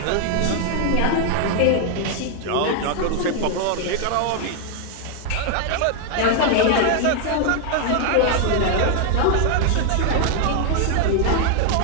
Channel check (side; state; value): both; different; correlation 0.00